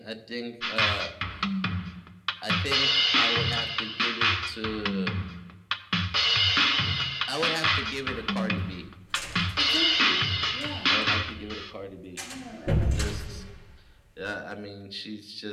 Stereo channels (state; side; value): identical; both; correlation 1.00